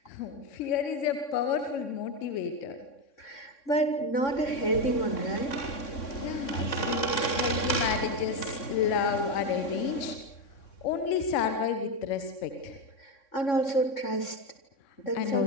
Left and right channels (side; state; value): right; late; 3.6 ms